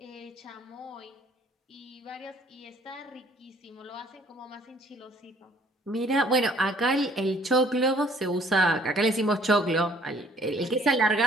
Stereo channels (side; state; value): both; normal; correlation 0.58